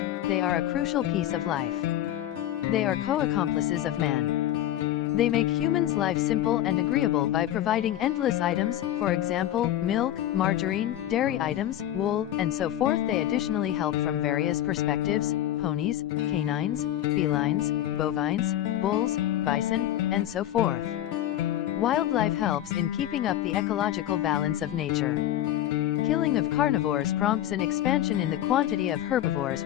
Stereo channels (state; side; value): quieter; right; 12.5 dB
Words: They are a crucial piece of life. They are co-accomplices of man. They make humans' life simple and agreeable by providing endless items, for example, milk, margarine, dairy items, wool, and so forth. They additionally help from various perspectives: ponies, canines, felines, bovines, bulls, bison, and so forth. Wildlife helps in keeping up the ecological balance of nature. Killing of carnivores prompts an expansion in the quantity of herbivores,